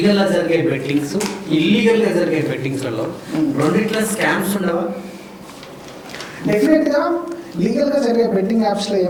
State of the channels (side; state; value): both; identical; correlation 1.00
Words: గా జరిగే బెట్టింగ్స్, ఇల్లీగల్ గా జరిగే బెట్టింగ్స్లలో రెండిట్ల స్కామ్స్ ఉండవా? డెఫినెట్గా లీగల్గా జరిగే బెట్టింగ్ యాప్స్లో